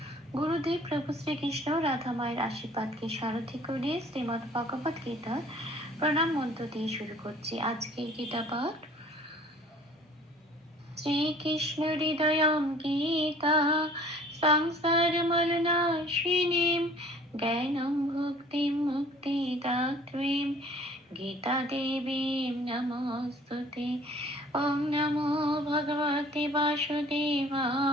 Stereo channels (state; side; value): normal; both; correlation 0.51